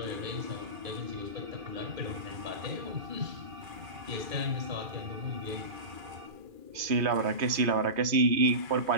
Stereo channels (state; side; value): late; left; 2.4 ms